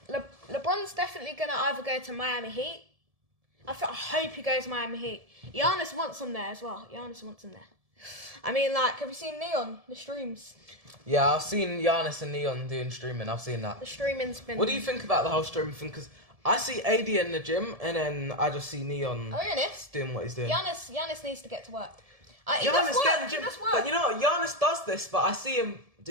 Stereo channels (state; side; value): late; left; 1.7 ms